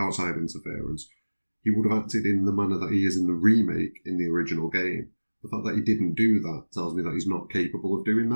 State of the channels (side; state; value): both; inverted; correlation -1.00